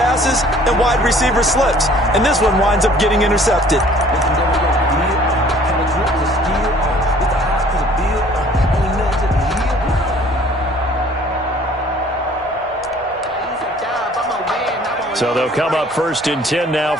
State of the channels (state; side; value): normal; both; correlation 0.54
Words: and wide receiver slips. And this one winds up getting intercepted. So they'll come up 1st and 10 now